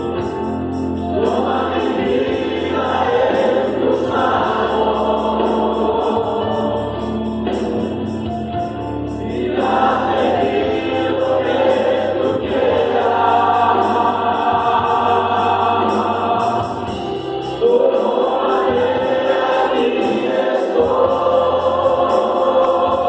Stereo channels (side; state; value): both; identical; correlation 1.00